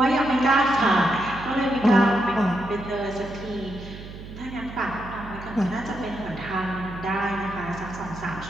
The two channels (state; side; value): noise; right; hum, 13 dB below the sound